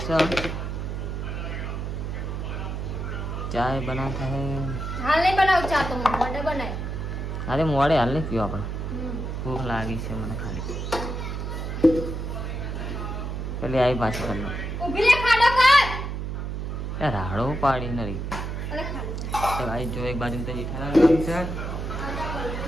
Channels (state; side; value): noise; right; hum, 4 dB below the sound